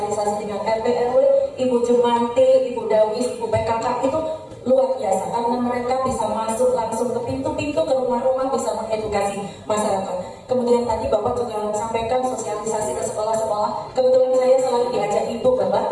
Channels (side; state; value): both; identical; correlation 1.00